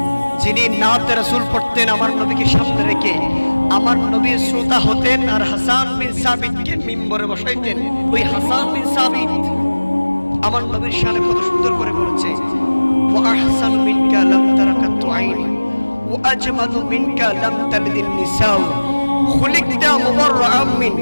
যিনি নাতে রাসূল পড়তেন আমার নবীকে সামনে রেখে আমার নবীর শ্রোতা হতেন আর হাসান বিন সাবিতকে মিম্বরে বসাইতেন। ওই হাসান বিন সাবিত আমার নবীর শানে কত সুন্দর করে বলেছে, ওয়া আহসানু মিনকা লাম তারাকাতু আইনি ওয়া আজমালু মিনকা লাম তালিদিন নিসাউ খুলিকতা মুবাররাআম মিন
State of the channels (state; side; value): inverted; both; correlation -1.00